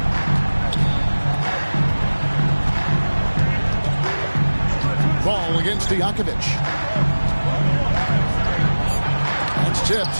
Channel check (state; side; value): inverted; both; correlation -1.00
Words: Ball against Stojakovic. That's